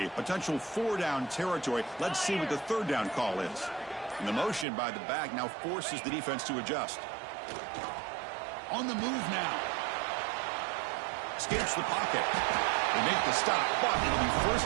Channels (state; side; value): drops out; left; at 4.7 s